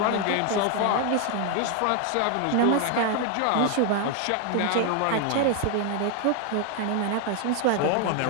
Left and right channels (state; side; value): different; both; correlation 0.01